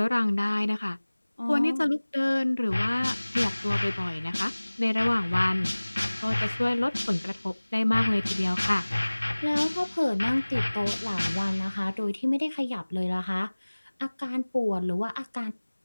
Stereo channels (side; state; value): both; inverted; correlation -1.00